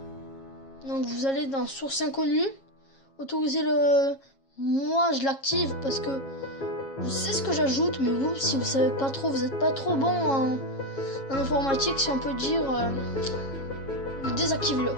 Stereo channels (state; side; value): late; right; 7.4 ms